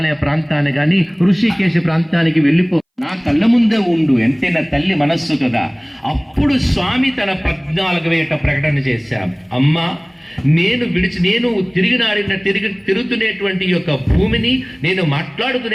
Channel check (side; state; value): both; identical; correlation 1.00